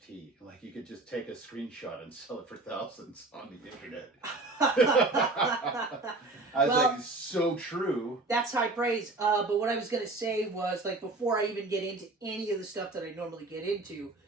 Like you could just take a screenshot and sell it for thousands on the internet. I was like, so true. That's high praise. But what I was going to say was, like, before I even get into any of the stuff that I normally get into,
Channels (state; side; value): quieter; left; 3.2 dB